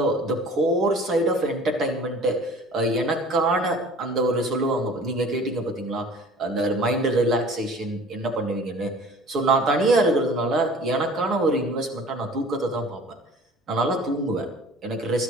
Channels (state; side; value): normal; both; correlation 0.46